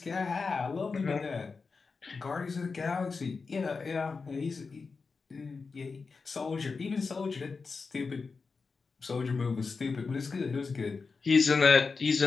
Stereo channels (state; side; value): quieter; right; 4.6 dB